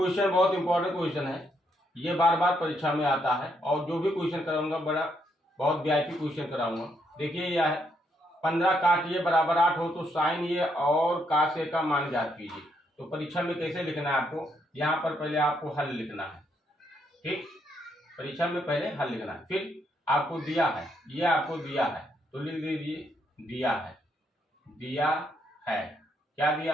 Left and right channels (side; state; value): both; normal; correlation 0.75